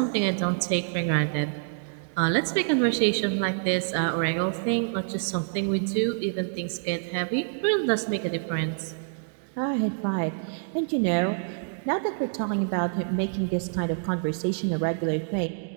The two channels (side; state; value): left; silent; digital silence